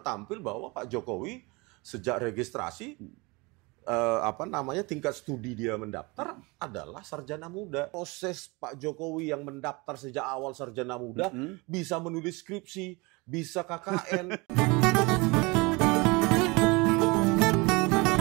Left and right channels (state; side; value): quieter; left; 26.2 dB